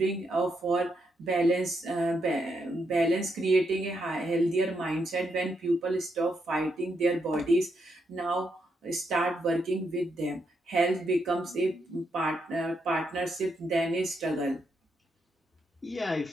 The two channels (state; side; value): normal; both; correlation 0.80